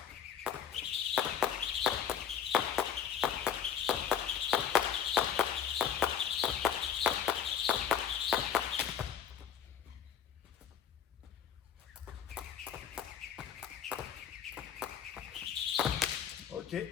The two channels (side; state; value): right; quieter; 8.5 dB